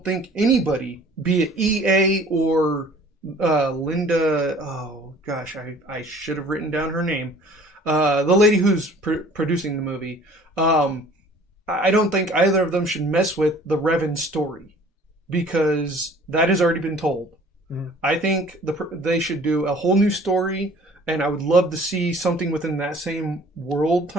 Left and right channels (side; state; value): both; normal; correlation 0.51